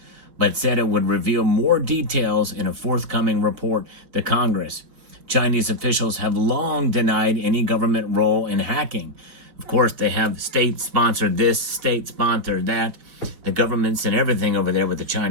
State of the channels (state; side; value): late; left; 5.1 ms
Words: but said it would reveal more details in a forthcoming report to Congress. Chinese officials have long denied any government role in hacking. Of course, they have state-sponsored this, state-sponsored that. The governments and everything over there with the